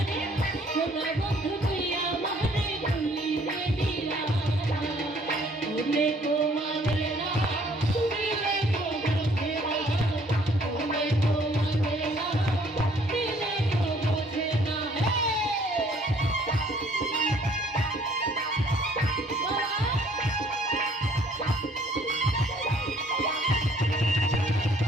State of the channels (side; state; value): both; normal; correlation 0.60